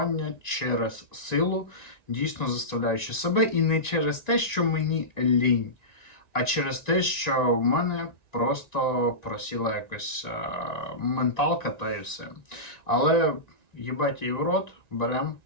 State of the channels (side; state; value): right; late; 1.9 ms